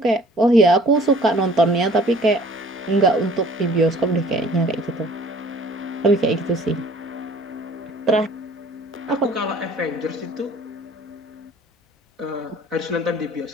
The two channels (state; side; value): normal; both; correlation 0.52